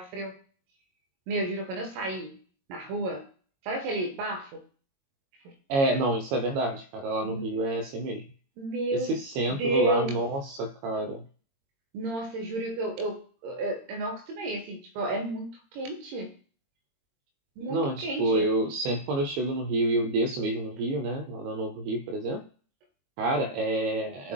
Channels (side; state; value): left; late; 22 ms